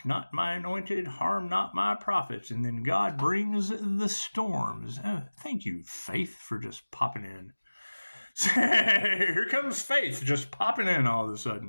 not my anointed, harm not my prophets. And then God brings the storms. Thank you, Faith, for just popping in. Here comes Faith just popping in all of a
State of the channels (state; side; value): inverted; both; correlation -1.00